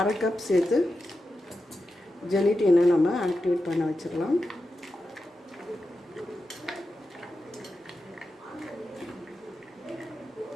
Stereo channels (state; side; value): normal; both; correlation 0.90